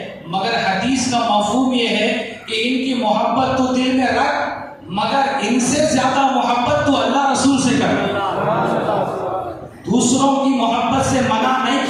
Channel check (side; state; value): both; identical; correlation 1.00